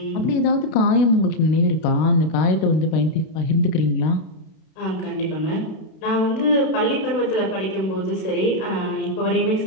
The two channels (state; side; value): late; right; 32 ms